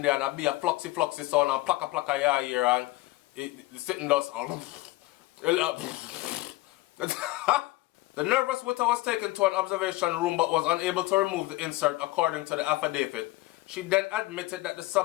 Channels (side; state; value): right; quieter; 19.0 dB